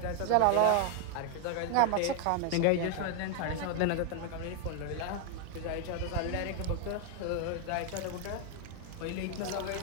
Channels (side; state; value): both; different; correlation 0.00